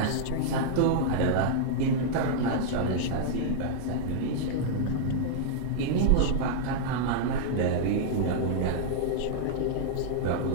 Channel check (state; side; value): different; both; correlation -0.01